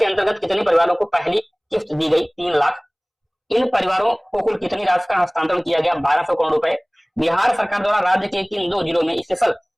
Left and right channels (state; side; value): identical; both; correlation 1.00